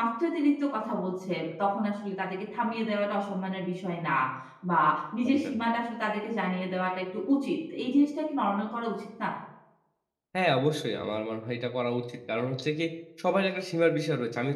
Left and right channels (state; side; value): identical; both; correlation 1.00